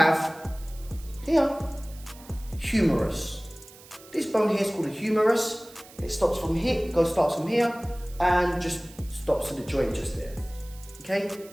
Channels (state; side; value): noise; right; hiss, 21 dB below the sound